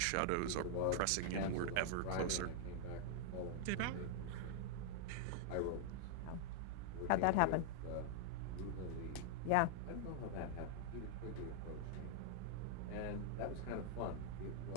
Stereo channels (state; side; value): different; both; correlation -0.01